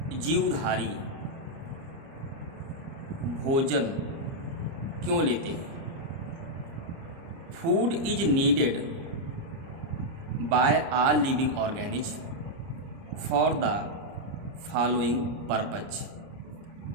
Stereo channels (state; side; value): late; left; 30 ms